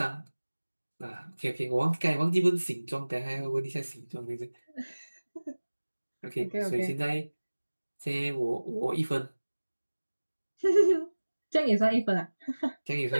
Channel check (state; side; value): inverted; both; correlation -1.00